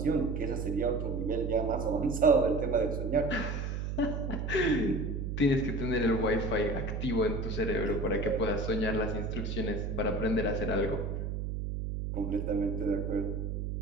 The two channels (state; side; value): noise; right; hum, 3 dB below the sound